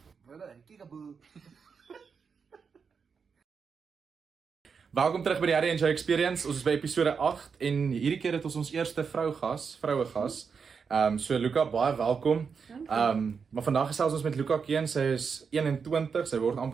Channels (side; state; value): left; quieter; 5.9 dB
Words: Welkom terug by die Harry and Joe Experience. Ons is by episode 8 en hierdie keer het ons eerste vroue gas. So Luca, baie welkom. Maar vandag gesels ons met Luca Keen. Sy is 21, sy word